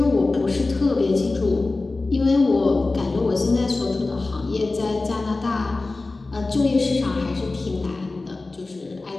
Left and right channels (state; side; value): quieter; right; 3.4 dB